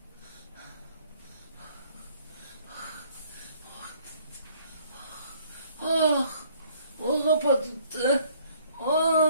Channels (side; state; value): both; inverted; correlation -0.60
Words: Ah, o kapattı.